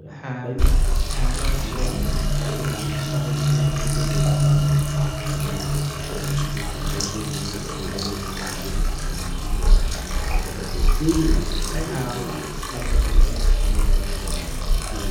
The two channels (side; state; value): both; identical; correlation 1.00